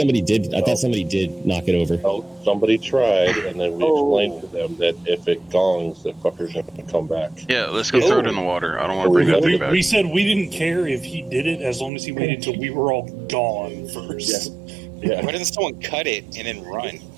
did. I thought somebody did knock it over. No, somebody tried, and then we explained to them that if it gongs, the fucker's going to come back. Yeah, let's go throw it in the water. I don't want to bring that thing back. We said we didn't care if he did it as long as he waited till we were all gone first. Yeah. Why doesn't someone cut it and then run?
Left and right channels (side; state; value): left; drops out; at 11.9 s